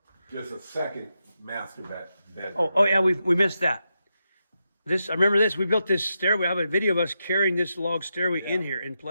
Just a second master bedroom. Oh yeah, we missed that. I remember this. We built this stairway. I have a video of us carrying this log stairway in here in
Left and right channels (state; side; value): inverted; both; correlation -0.86